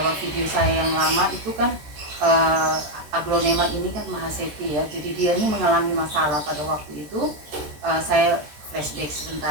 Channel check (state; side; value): late; left; 14 ms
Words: video saya yang lama itu kan aglonema ini kan Mahasepi ya. Jadi dia ini mengalami masalah pada waktu itu. Saya flashback